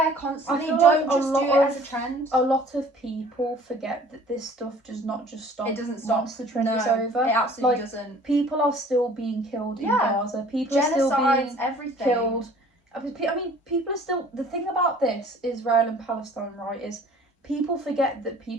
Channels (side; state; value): both; normal; correlation 0.51